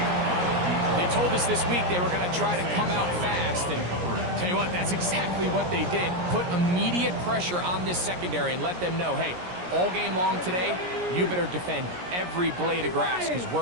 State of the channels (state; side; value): late; left; 17 ms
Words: They told us this week they were going to try to come out fast, and tell you what, that's exactly what they did. Put immediate pressure on this secondary and let them know, hey, all game long today, you better defend every blade of grass because